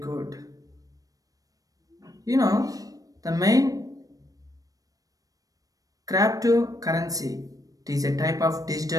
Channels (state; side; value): late; left; 0.17 ms